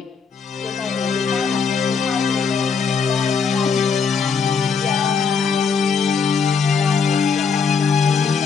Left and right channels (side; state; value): right; quieter; 5.7 dB